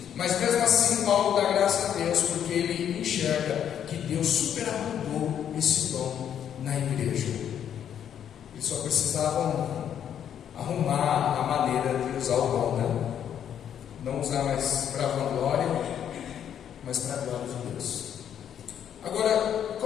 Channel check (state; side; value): quieter; right; 9.3 dB